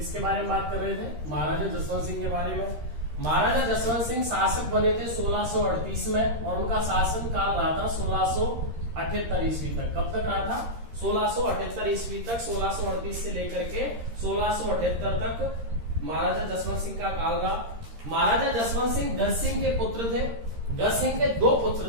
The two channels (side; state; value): left; late; 13 ms